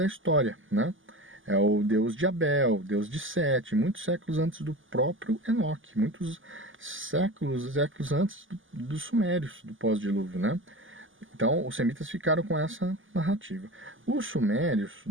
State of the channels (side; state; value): left; late; 0.58 ms